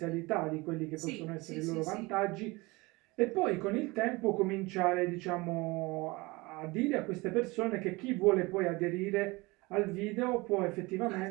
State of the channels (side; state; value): left; quieter; 23.6 dB